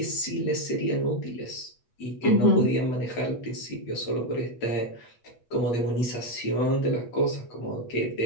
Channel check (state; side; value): late; right; 8.2 ms